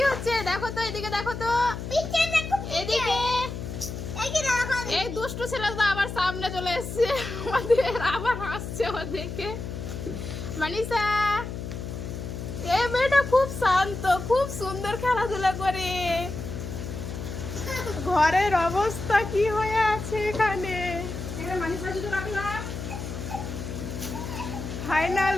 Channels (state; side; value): noise; left; hum, 7 dB below the sound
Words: হচ্ছে দেখো তো, এদিকে দেখো তো, এদিকে। এই দুষ্টু ছেলে তো আবার সামনে চলে এসছে আমাদের, আবার হাসছে ও দেখে। মানিষা, এই মেয়েটা খুব শান্ত, খুব সুন্দর খেলাধুলা করে। ঘরের অবস্থা কি হয়ে আছে এখানে? ফাইনাল